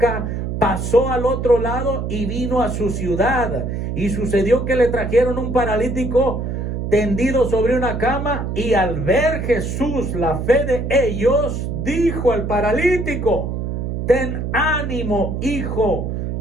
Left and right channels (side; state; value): right; noise; hum, 3 dB below the sound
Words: pasó al otro lado y vino a su ciudad. Y sucedió que le trajeron un paralítico tendido sobre una cama, y al ver Jesús la fe de ellos, dijo al paralítico: ten ánimo, hijo,